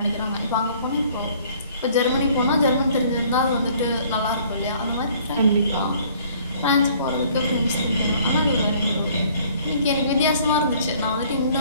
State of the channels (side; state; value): both; inverted; correlation -0.57